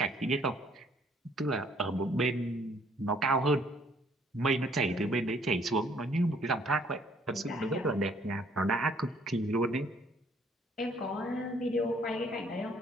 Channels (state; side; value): normal; both; correlation 0.63